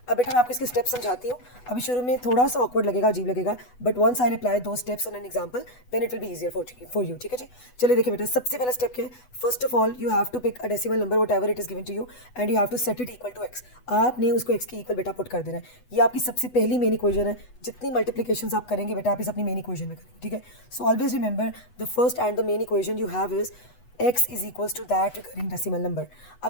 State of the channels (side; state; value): right; late; 8.1 ms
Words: अब बेटा मैं आपको इसके steps समझाती हूँ. अभी शुरू में थोड़ा सा ऑकवर्ड लगेगा, अजीब लगेगा, but once I apply two steps on an example then it will be easier for you. ठीक है जी. चलिए देखिए बेटा, सबसे पहला स्टेप क्या है? First of all you have to pick a decimal number whatever it is given to you and you have to set it equal to x. आपने उसको एक्स की इक्वल बेटा पुट कर देना है. ये आपकी सबसे पहली मेन इक्वेशन है. जितनी मल्टीप्लिकेशन आप करेंगे बेटा, आप इस अपनी मेन इक्वेशन में करेंगे. ठीक है, so always remember the first and the main equation you have is x is equals to that recurring decimal number. अब